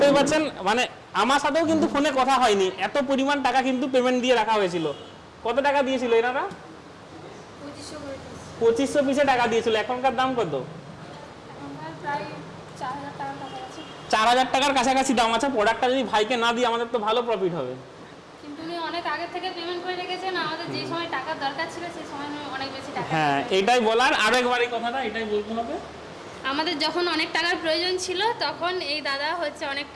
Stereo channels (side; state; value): both; identical; correlation 1.00